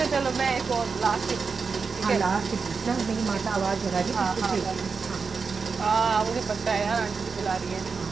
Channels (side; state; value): left; quieter; 5.0 dB